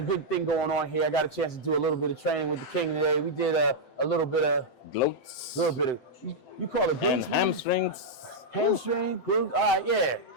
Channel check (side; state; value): right; late; 7.8 ms